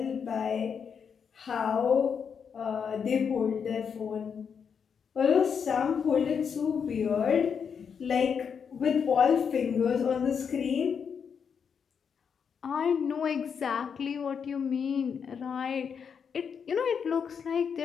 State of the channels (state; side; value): quieter; right; 6.8 dB